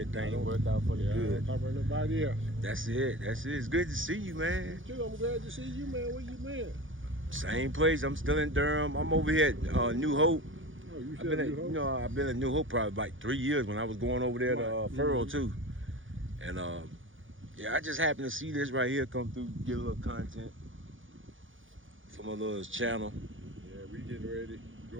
don't- worked out for the Yeah, I good. don't talk about nobody else. That's it. It's good to see you, man. Too, I'm glad to see you, man. Where you been? Same place. I'm still in Durham. I'm over here at New Hope. Oh, you I've said been at, New Hope? I've been at New Hope probably like 3 years when I was going over there to Right. Furrow too. And yeah, I just happened to see this right here come through, get a little content for my little channel. Yeah, we getting ready to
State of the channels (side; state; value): left; late; 0.57 ms